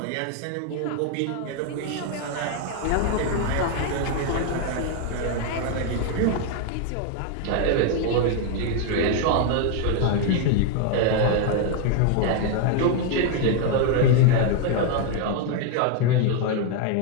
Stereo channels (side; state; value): both; different; correlation 0.00